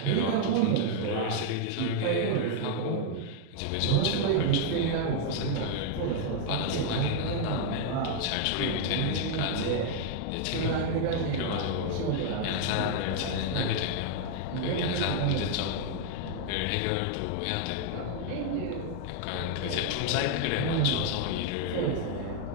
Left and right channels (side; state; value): both; different; correlation 0.00